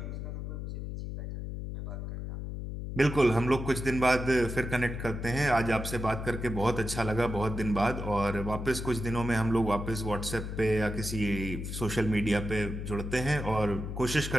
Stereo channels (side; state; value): left; noise; hum, 6 dB below the sound